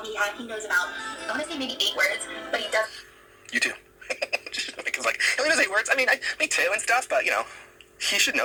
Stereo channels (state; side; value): identical; both; correlation 1.00